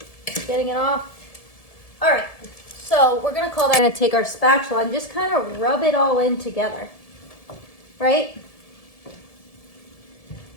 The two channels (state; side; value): late; right; 1.7 ms